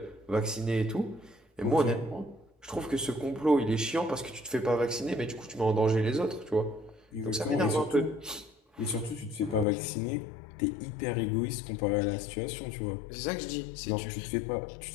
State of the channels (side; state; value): right; drops out; at 9.7 s